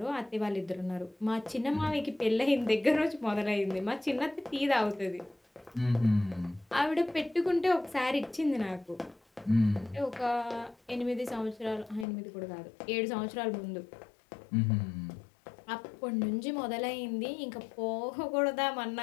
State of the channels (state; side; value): drops out; right; at 12.1 s